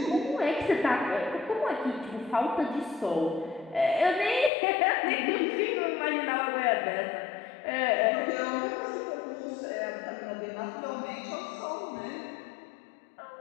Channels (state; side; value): drops out; right; at 4.5 s